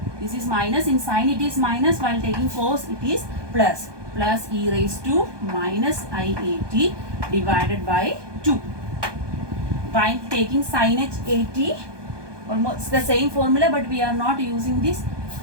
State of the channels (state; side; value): late; left; 1.2 ms